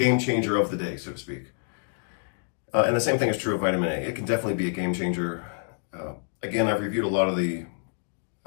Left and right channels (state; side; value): silent; right; 60 dB below the other